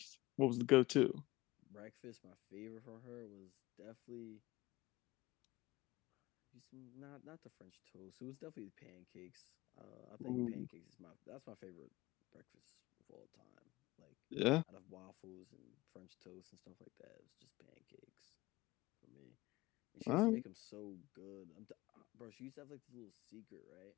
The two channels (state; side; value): quieter; right; 20.2 dB